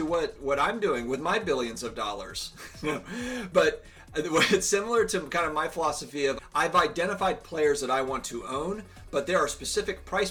what I'm doing with my billions of dollars. But it's similar to kind of my philosophy of, I've identified players that I want to own, but there are specific price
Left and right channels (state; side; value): identical; both; correlation 1.00